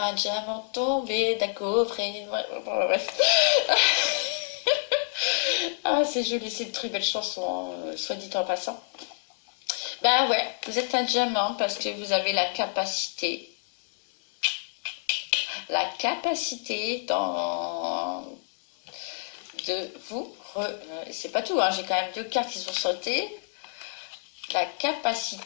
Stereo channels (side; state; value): right; silent; digital silence